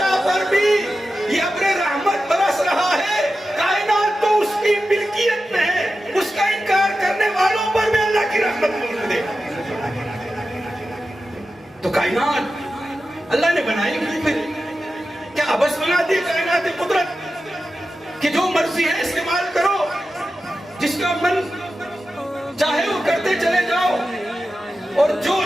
پر بھی یہ ابر رحمت برس رہا ہے۔ کائنات تو اس کی ملکیت میں ہے، اس کا انکار کرنے والوں پر بھی اللہ کی رحمت موجود ہے۔ تو کائنات اللہ نے بنائی کیوں پھر؟ کیا ابس بنا دی کائنات قدرت کہ جو مرضی ہے استعمال کرو، جس کا من چاہے وہ کرتے چلے جاؤ، اور جو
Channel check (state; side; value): normal; both; correlation 0.92